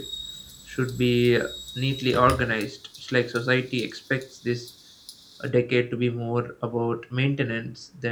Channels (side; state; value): both; identical; correlation 1.00